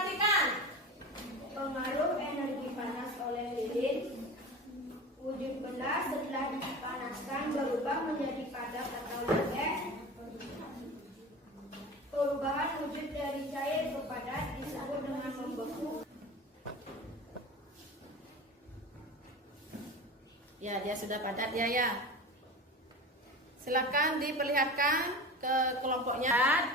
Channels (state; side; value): normal; both; correlation 0.32